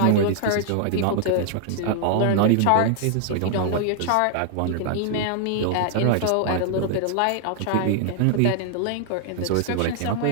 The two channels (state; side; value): different; both; correlation 0.00